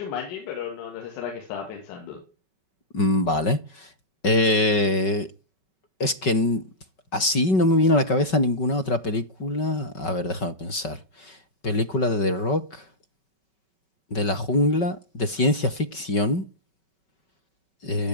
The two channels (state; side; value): late; right; 5.3 ms